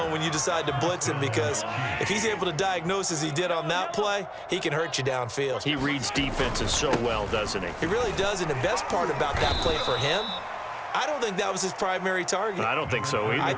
when you decide to blitz him, because if he's able to diagnose as he did on that play, he can hurt you downfield. He reads defenses so well, doesn't he? He really does, and the best part about that play for him I don't think that was his primary target. I don't think so either. I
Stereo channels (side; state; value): both; identical; correlation 1.00